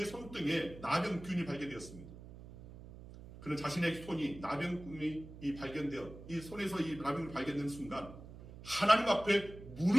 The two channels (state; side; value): noise; right; hum, 15 dB below the sound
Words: 손등에 나병균이 발견되었습니다. 그는 자신의 손이 나병균이 발견되어 이 손에서 이 나병균이 발견된 순간 하나님 앞에